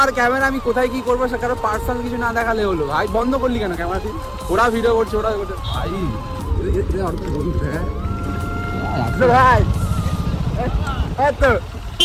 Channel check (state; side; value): identical; both; correlation 1.00